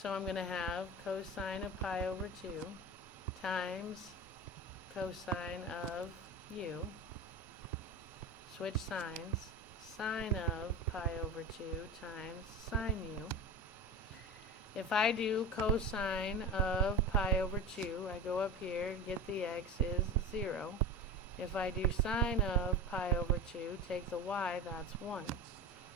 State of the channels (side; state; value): both; normal; correlation 0.30